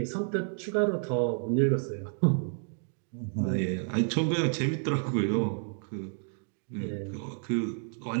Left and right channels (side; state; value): left; silent; 57 dB below the other